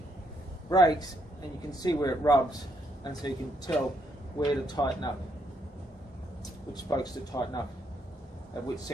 brakes, and you can see where it rubs, and so you can tell where to tighten up, which spokes to tighten up at which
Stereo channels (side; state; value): both; normal; correlation 0.73